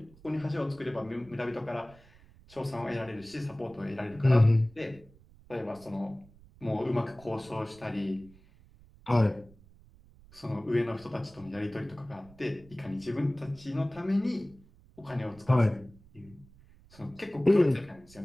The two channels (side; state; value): right; noise; rumble, 25 dB below the sound